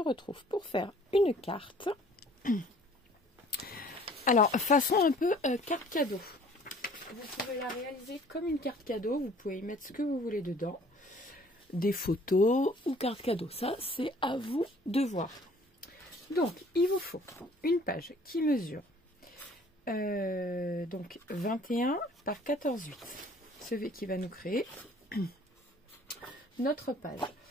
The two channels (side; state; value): both; normal; correlation 0.54